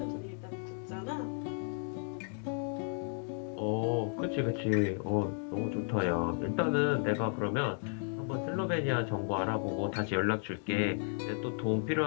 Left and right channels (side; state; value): right; silent; 55 dB below the other